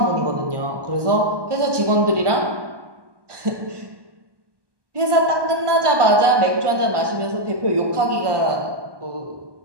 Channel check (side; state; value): left; late; 1.1 ms